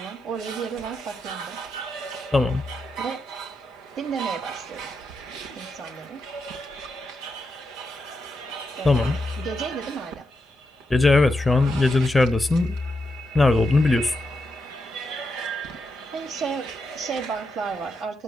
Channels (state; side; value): normal; both; correlation 0.85